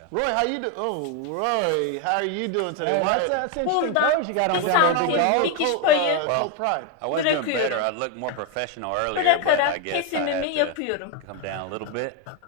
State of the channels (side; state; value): both; different; correlation 0.01